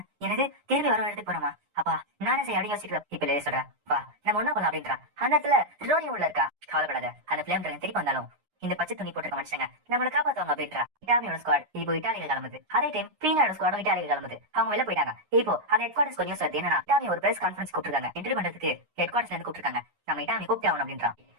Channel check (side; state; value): left; late; 9.7 ms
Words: எனக்கு திருப்பி வர எடுத்து போறோமா அப்பா நானே செய்ய அப்படி யோசிக்கிறேன். இப்ப லேயே சொல்றேன் வா நம்ம ஒண்ணா பண்ணலாம் அப்படின்றான். அந்த இடத்துல ரோரி உள்ள இருக்கா. கவலைப்படாத அந்த பிளேம் ட்ரெயின் திருப்பி வந்தாலும் இந்த பச்சை துணி போட்டிருக்க மனுஷங்க நம்மளை காப்பாத்துவாங்க அப்படின்றா. இட்டாலியோட ஸ்குவாட் இப்போ இட்டாலியில கிளம்புது. அதே டைம் பீனாவோட ஸ்குவாடும் இட்டாலியில கிளம்புது. அவங்க வெளில போயிட்டாங்க. இப்போ அந்த ஹெட் குவார்டர்ஸ் நியூஸ் வருது என்னன்னா இட்டாலி ஒரு பிரஸ் கான்ஃபரன்ஸ் கூப்பிட்டுருக்காங்க. இன்டர்வியூ பண்றதுக்கு ஹெட் குவார்டர்ஸ்ல இருந்து கூப்பிட்டுருக்காங்க. நம்ம இட்டாலி கூப்பிட்டு ஆகணும் அப்படின்றான்.